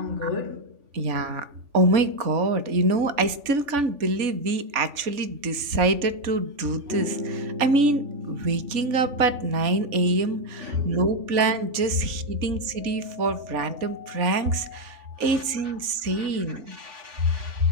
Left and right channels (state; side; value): late; left; 3.5 ms